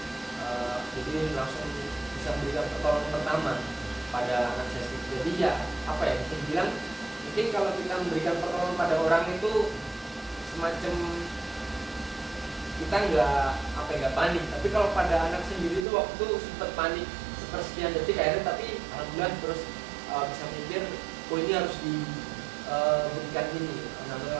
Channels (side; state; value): left; drops out; at 15.9 s